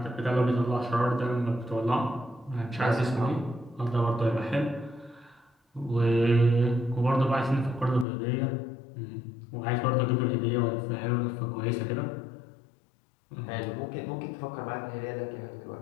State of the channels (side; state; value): right; drops out; at 8.1 s